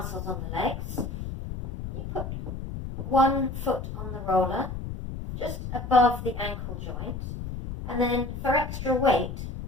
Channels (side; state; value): left; noise; rumble, 7 dB below the sound